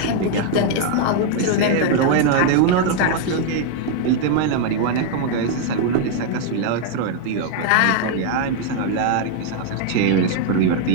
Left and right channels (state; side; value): different; both; correlation 0.00